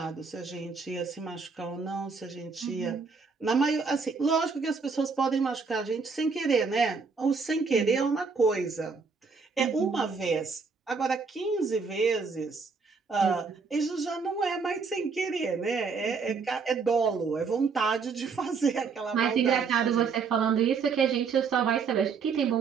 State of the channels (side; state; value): left; quieter; 5.1 dB